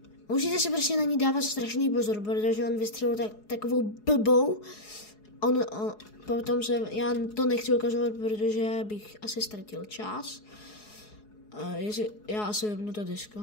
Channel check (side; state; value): right; late; 4.8 ms